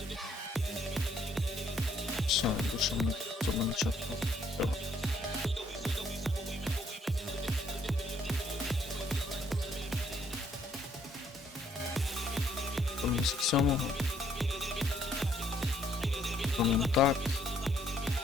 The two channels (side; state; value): both; normal; correlation 0.67